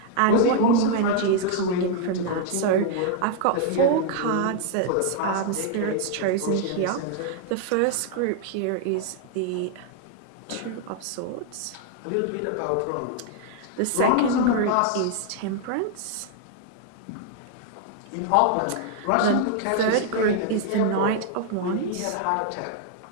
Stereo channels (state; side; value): different; both; correlation 0.00